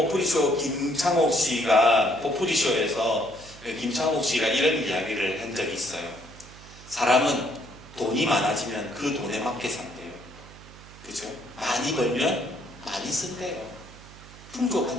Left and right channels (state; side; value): noise; right; hum, 19 dB below the sound